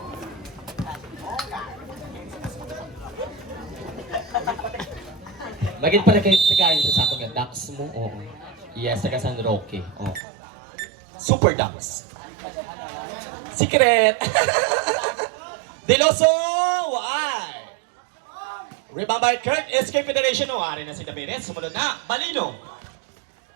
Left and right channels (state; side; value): drops out; left; at 10.2 s